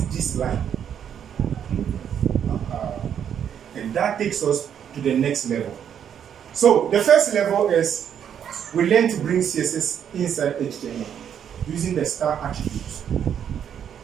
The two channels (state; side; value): quieter; left; 8.8 dB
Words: this line. And that takes us to the next level. So the first level is we learn to bring CSS inside HTML using the star attributes.